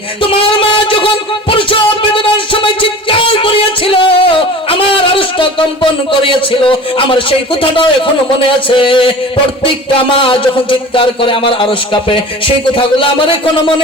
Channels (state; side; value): normal; both; correlation 0.39